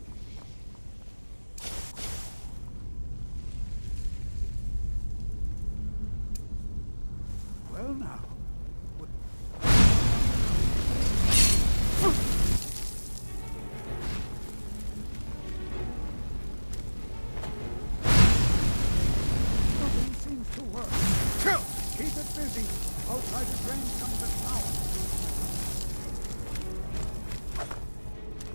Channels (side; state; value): both; inverted; correlation -1.00